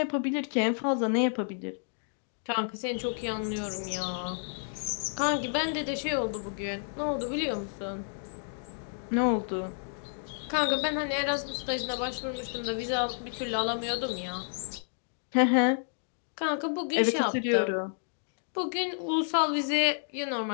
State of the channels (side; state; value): right; silent; digital silence